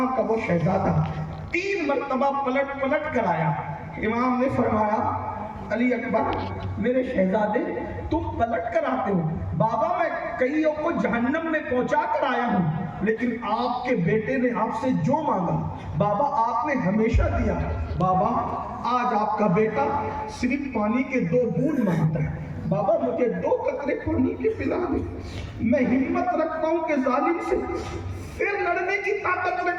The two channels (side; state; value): both; identical; correlation 1.00